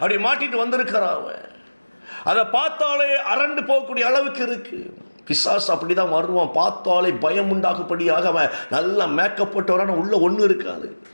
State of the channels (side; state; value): both; inverted; correlation -1.00